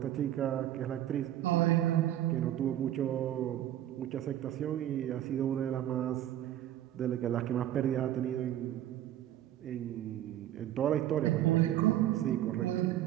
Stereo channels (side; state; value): left; quieter; 12.4 dB